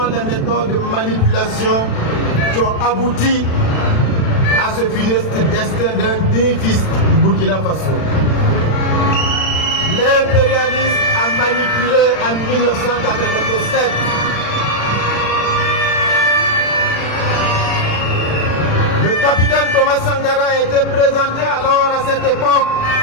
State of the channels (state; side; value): late; right; 36 ms